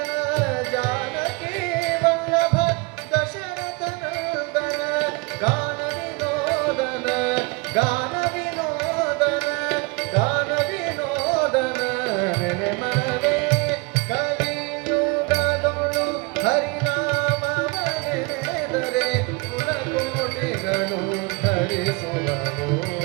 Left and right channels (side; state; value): left; quieter; 28.6 dB